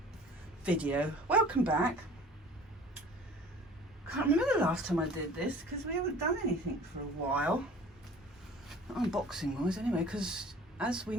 video. Welcome back. Can't remember the last time I did this because we haven't done anything for a while. Not unboxing wise anyway, because as we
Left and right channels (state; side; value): normal; both; correlation 0.46